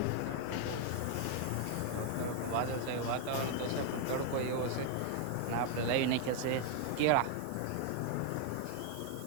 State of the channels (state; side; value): different; both; correlation 0.00